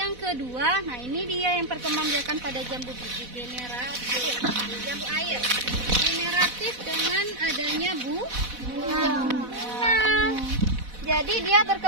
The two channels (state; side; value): late; left; 4.1 ms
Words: kedua, nah ini dia yang perkembangbiakan pada jambu biji generatif, jambu air. Generatif dengan adanya bunga. Jadi dia